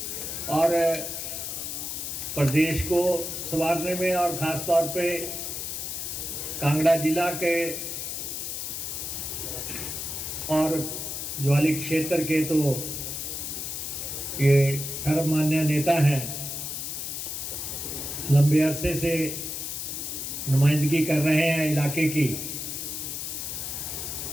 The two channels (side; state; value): left; noise; hiss, 5 dB below the sound